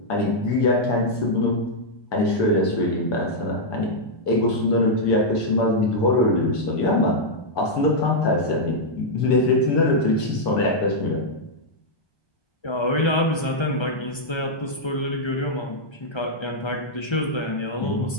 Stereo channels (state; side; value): late; right; 1.3 ms